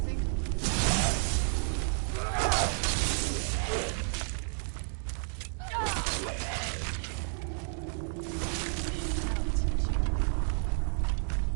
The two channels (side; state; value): left; silent; digital silence